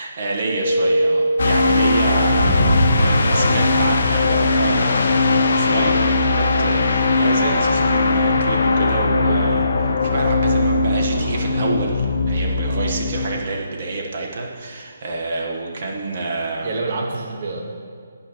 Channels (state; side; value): inverted; both; correlation -0.77